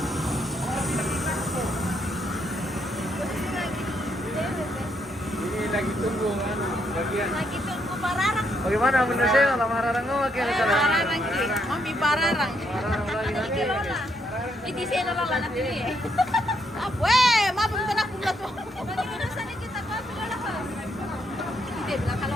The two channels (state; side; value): normal; both; correlation 0.75